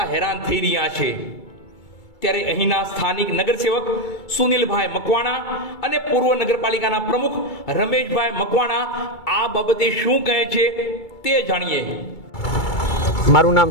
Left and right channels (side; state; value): right; late; 2.3 ms